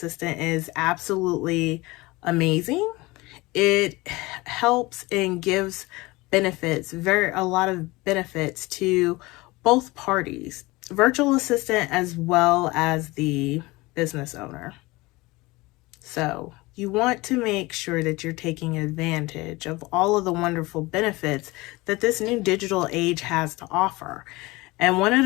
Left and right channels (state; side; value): quieter; right; 22.0 dB